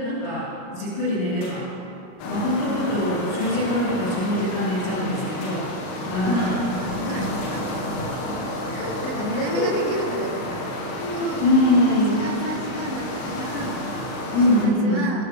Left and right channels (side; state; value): right; late; 38 ms